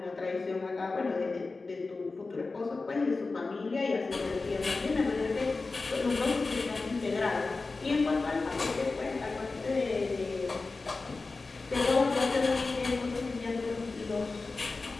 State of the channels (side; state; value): right; quieter; 3.8 dB